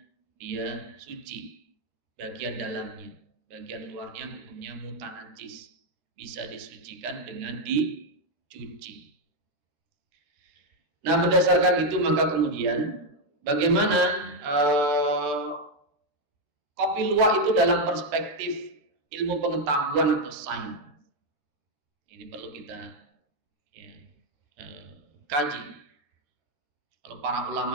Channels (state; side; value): late; left; 14 ms